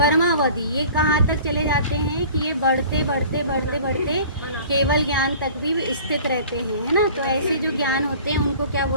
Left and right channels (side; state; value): both; inverted; correlation -0.45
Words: ये कहाँ तक चले जाते हैं कि ये बढ़ते बढ़ते बढ़ते बढ़ते केवल ज्ञान तक भी स्थित रहते हैं, है ना। तो ऐसे जो ज्ञान होते हैं उनको क्या